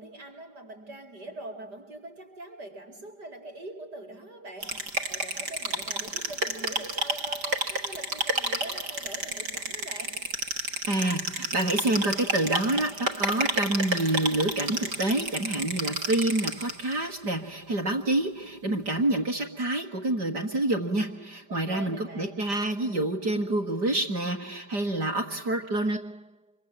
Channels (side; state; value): left; late; 5.0 ms